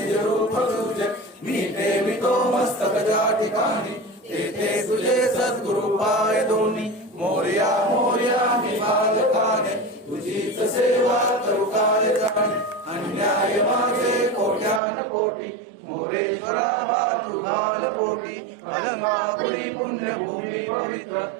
रूप तुझे मी ठेवितो मस्तक ज्या ठिकाणी ते तुझे सद्गुरु पाय दोन्ही मोरया मोरया मी बालकाने तुझीच सेवा करू काय जाणे अन्याय माझे कोट्यान कोटी मोरेश्वरा हा तुझाल कोटी अलंकापुरी पुण्यभूमी पवित्र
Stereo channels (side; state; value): left; drops out; at 14.8 s